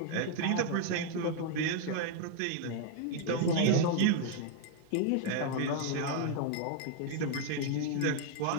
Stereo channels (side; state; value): both; different; correlation 0.00